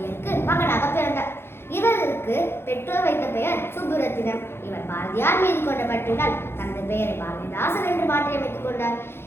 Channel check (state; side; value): late; right; 0.11 ms